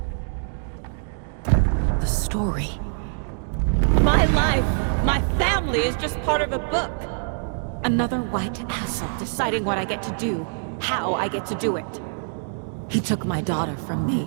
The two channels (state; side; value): silent; left; digital silence